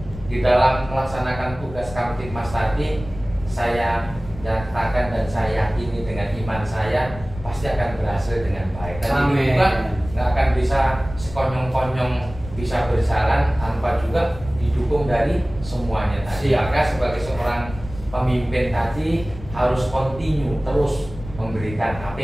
di dalam melaksanakan tugas Kamtibmas tadi, saya nyatakan dan saya yakini dengan iman saya pasti akan berhasil dengan baik. Dan ini juga nggak akan bisa sekonyong-konyong bisa berjalan tanpa juga didukung dari semuanya tadi. Maka sebagai seorang pemimpin tadi harus continue terus memberikan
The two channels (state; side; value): noise; left; rumble, 13 dB below the sound